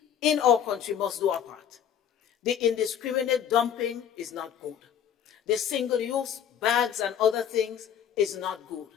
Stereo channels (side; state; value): right; quieter; 8.9 dB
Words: in our country must do our part. The indiscriminate dumping is not good. The single-use bags and other things is not good.